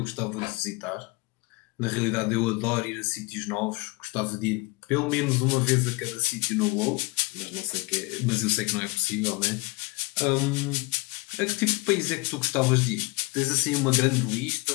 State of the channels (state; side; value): quieter; right; 25.4 dB